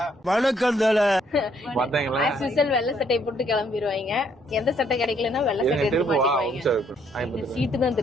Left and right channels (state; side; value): normal; both; correlation 0.68